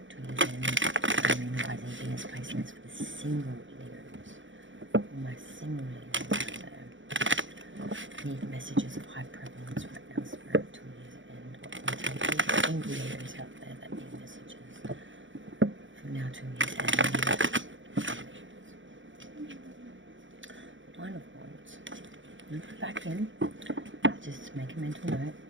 to year's end? Moon, rising, Venus placing this for the single Leos. For my single Leos out there. Need messages of high prevalence right now, Spirit, to year's end. What can we take these single Leos out there that need messages from now to year's end? Nine of Wands. You put it back in. Just make a mental note.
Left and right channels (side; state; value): left; late; 0.56 ms